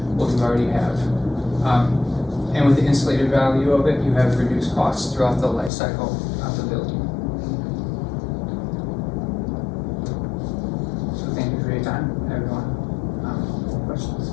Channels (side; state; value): right; drops out; at 5.7 s